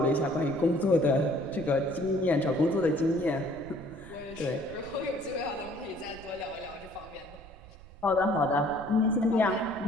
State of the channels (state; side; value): noise; right; rumble, 19 dB below the sound